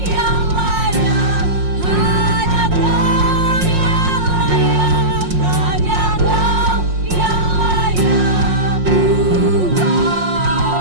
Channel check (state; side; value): late; left; 5.6 ms